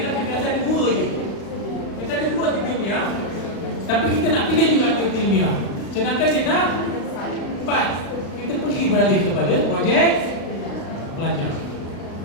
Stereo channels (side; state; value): right; late; 36 ms